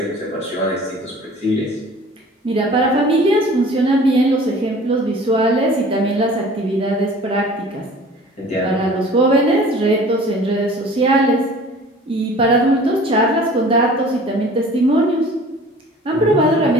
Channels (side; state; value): both; normal; correlation 0.46